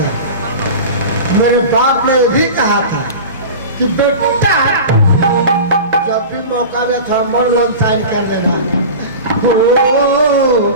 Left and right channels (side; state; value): both; inverted; correlation -0.32